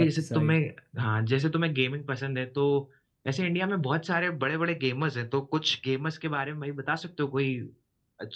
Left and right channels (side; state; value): both; identical; correlation 1.00